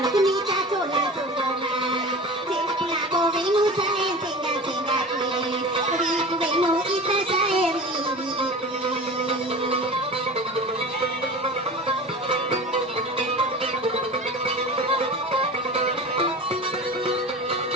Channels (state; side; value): normal; both; correlation 0.35